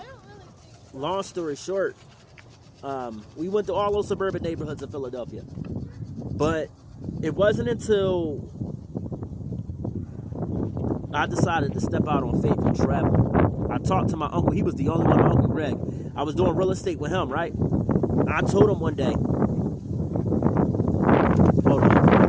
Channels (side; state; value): both; identical; correlation 1.00